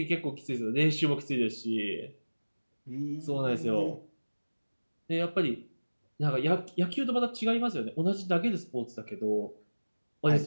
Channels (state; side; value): inverted; both; correlation -1.00